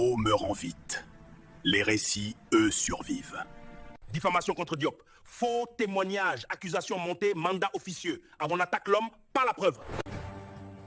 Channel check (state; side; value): identical; both; correlation 1.00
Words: meurent en vite. Les récits, eux, survivent. Diffamation contre Diop. Faux témoignage, accusation montée, mandat officieux. Avant on attaque l'homme, pas la preuve.